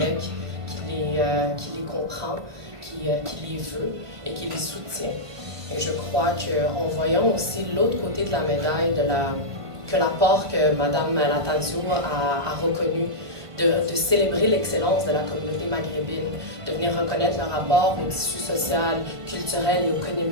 qui les comprend, qui les veut et qui les soutient. Et je crois qu'en voyant aussi l'autre côté de la médaille, que l'apport que Mme Natanzio a reconnu, de célébrer l'excellence de la communauté maghrébine, de venir reconnaître leur rapport au tissu social, culturel et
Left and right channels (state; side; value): late; left; 1.5 ms